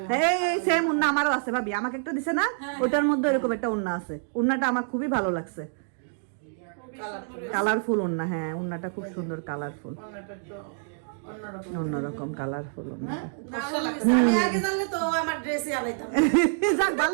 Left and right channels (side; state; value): left; silent; digital silence